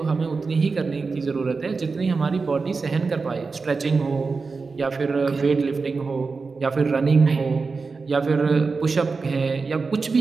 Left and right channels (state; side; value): quieter; left; 4.4 dB